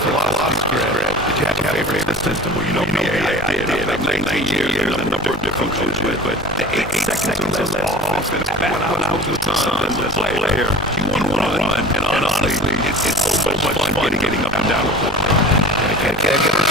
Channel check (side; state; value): both; normal; correlation 0.40